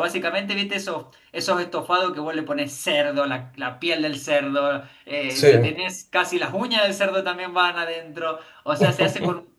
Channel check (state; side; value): identical; both; correlation 1.00